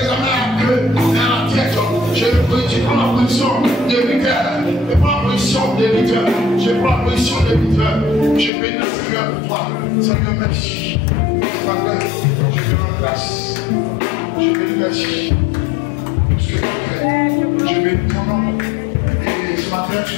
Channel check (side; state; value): right; drops out; at 8.5 s